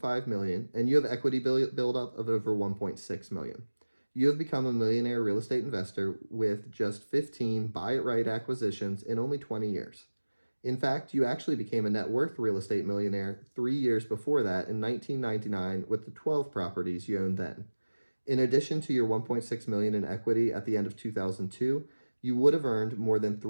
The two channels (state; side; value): inverted; both; correlation -1.00